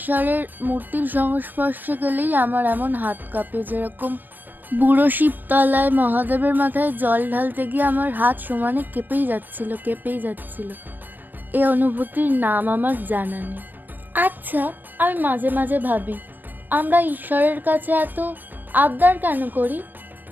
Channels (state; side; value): late; left; 0.091 ms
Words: মূর্তির সংস্পর্শে গেলেই আমার এমন হাত কাঁপে। যেরকম বুড়ো শিবতলায় মহাদেবের মাথায় জল ঢালতে গিয়ে আমার হাত সমানে কেঁপেই যাচ্ছিল। এই অনুভূতির নাম আমার জানা নেই। আচ্ছা, আমি মাঝে মাঝে ভাবি আমরা ঈশ্বরের কাছে এত আবদার কেন করি?